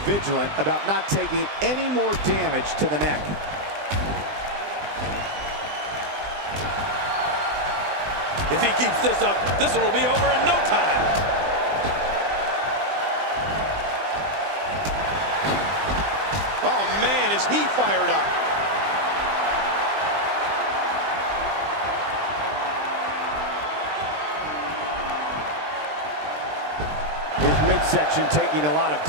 vigilant about not taking any more damage to the neck. If he keeps this up, this one will be over in no time. Oh, man, is he fired up. His midsection taking a lot of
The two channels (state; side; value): late; left; 20 ms